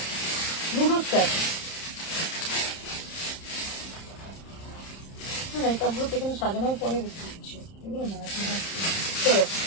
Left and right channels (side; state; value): right; late; 31 ms